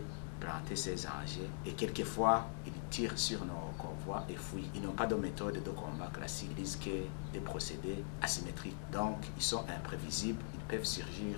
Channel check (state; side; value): silent; right; digital silence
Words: planter ces engins et quelquefois, ils tirent sur nos convois et fuient. Ils n'ont pas de méthode de combat classique, ils risquent des procédés asymétriques. Donc, ils sont imprévisibles, ils peuvent